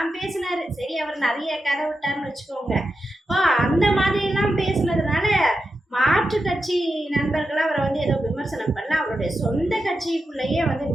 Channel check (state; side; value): normal; both; correlation 0.89